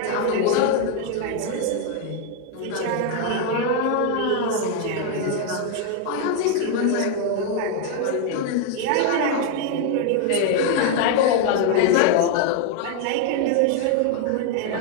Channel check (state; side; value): different; both; correlation 0.01